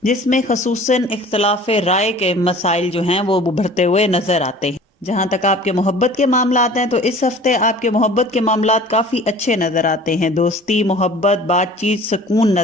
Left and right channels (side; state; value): both; normal; correlation 0.45